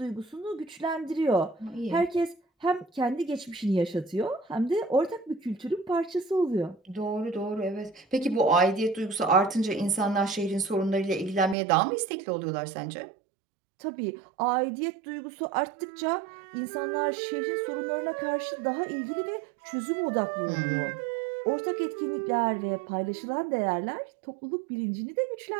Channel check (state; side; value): drops out; left; at 11.6 s